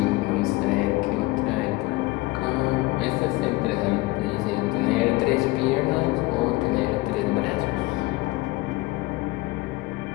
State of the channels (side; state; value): right; quieter; 20.8 dB